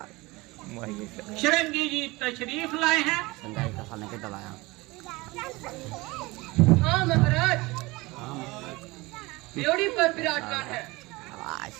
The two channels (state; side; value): quieter; left; 22.4 dB